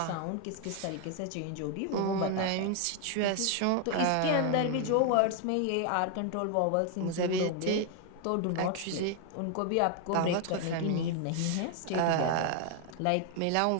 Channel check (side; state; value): both; different; correlation 0.00